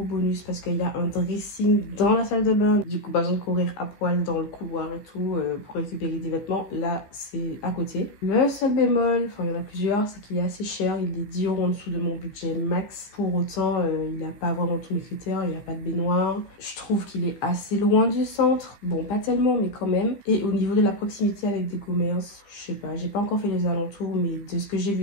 bonus parce qu'il y a un dressing dans la salle de bain. Du coup, pas besoin de courir à poil dans le couloir et tout pour récupérer des vêtements. Là, c'est à côté. Le seul bémol, enfin il y en a plusieurs, c'est qu'il est assez cher. Il est 10 € en dessous de mon budget max. Pour autant, il n'a pas vraiment tous mes critères. Il n'y a pas de baignoire. Je trouve qu'il est assez loin du centre. Bon, pas tellement, mais quand même. Et au niveau de la proximité avec des commerces, je sais pas. J'ai pas encore fait les alentours, mais de ce que j'ai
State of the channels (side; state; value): right; late; 15 ms